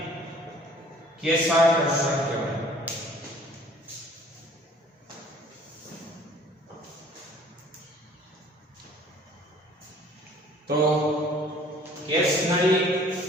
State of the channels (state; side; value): normal; both; correlation 0.53